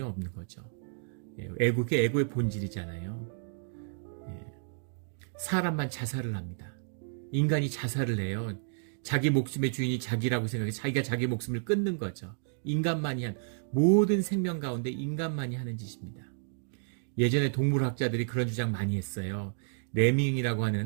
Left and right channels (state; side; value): silent; left; digital silence